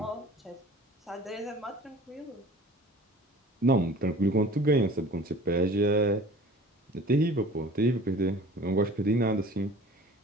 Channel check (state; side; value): normal; both; correlation 0.45